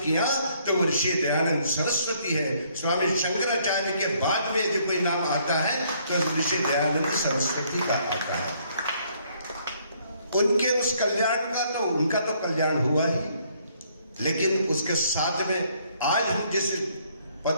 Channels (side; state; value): both; inverted; correlation -0.67